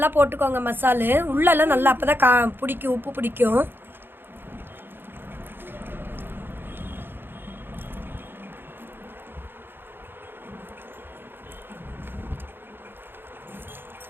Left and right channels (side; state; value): left; late; 0.10 ms